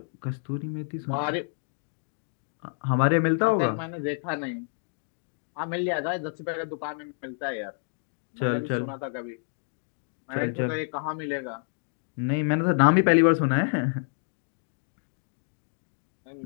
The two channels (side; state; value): right; silent; 58 dB below the other